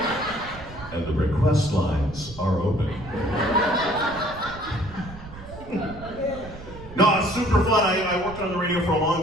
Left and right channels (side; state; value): right; noise; rumble, 15 dB below the sound